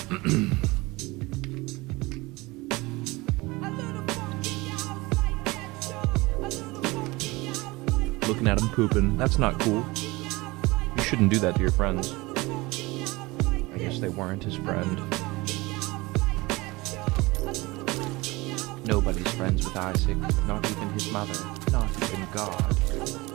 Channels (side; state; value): left; quieter; 22.4 dB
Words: Looking at him pooping. That's not cool. You shouldn't do that to your friends. I guess they weren't his friend. Nobody's friends with Isaac, not even his mother, not even God.